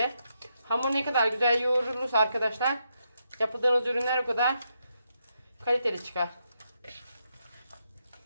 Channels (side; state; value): both; inverted; correlation -0.81